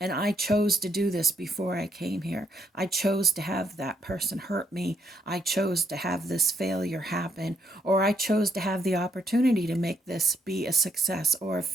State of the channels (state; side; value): normal; both; correlation 0.73